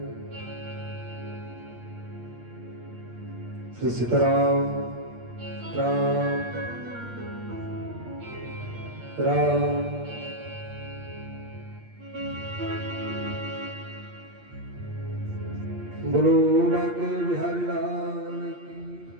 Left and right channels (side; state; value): left; late; 8.5 ms